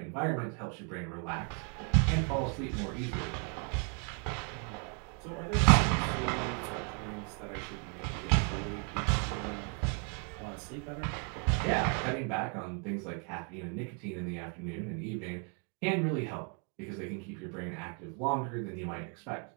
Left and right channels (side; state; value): left; quieter; 38.6 dB